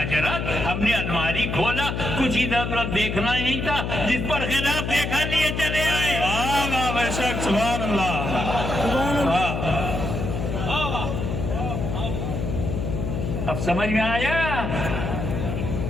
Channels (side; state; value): left; noise; hum, 3 dB below the sound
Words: ہم نے الماری کھولا, کچھ ادھر ادھر دیکھنا ہی نہیں تھا, جس پر خلاف دیکھا لیے چلے آئے. بے شک, سبحان اللہ. اب سمجھ میں آیا؟